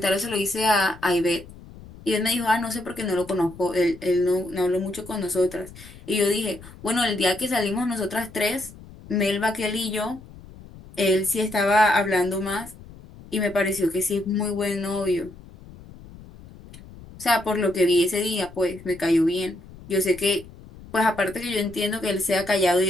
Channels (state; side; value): noise; left; rumble, 19 dB below the sound